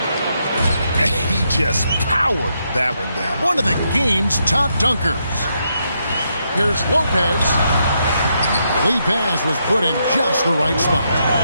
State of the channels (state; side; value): inverted; both; correlation -0.79